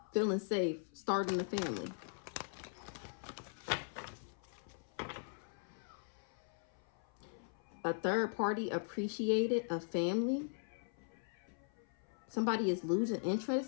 Feeling safe. Starting a family. A third party appreciated a family. Somebody is losing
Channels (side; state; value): right; silent; 51 dB below the other